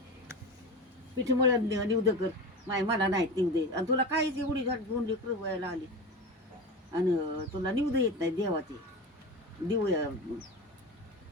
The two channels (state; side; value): normal; both; correlation 0.27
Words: पिठ मळण निवद कर मला नाही निवदे आणि तुला काहीच एवढी झाड दोन लेकरं व्हायला आली आणि तुला निवद येत नाही देवाचे देऊया